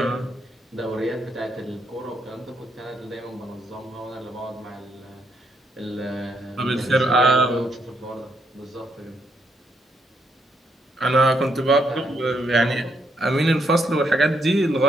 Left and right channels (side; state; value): both; normal; correlation 0.75